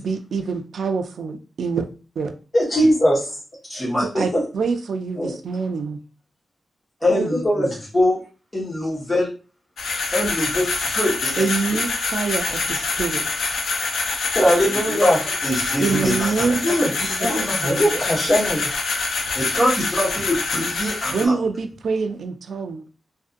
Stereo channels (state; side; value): normal; both; correlation 0.86